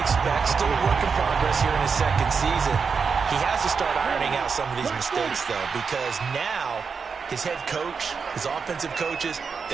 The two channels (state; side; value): quieter; left; 5.6 dB